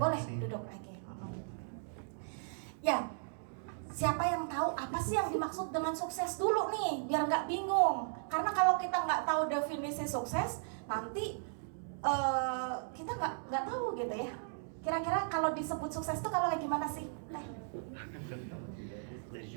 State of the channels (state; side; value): silent; left; digital silence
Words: Boleh kasih. duduk lagi. Ya, siapa yang tahu apa sih yang dimaksud dengan sukses dulu nih, biar nggak bingung. Karena kalau kita nggak tahu definisi sukses, nanti kita nggak tahu gitu ya. Kira-kira kalau disebut sukses itu kalau kayak gimana sih?